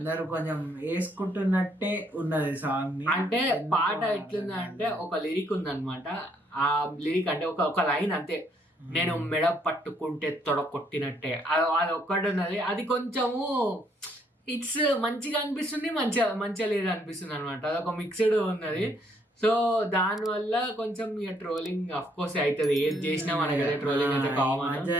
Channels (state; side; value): normal; both; correlation 0.69